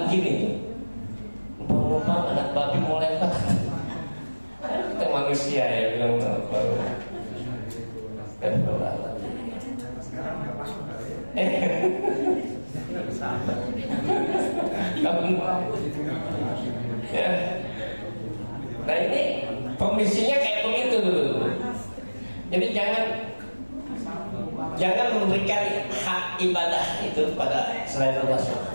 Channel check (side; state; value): both; inverted; correlation -1.00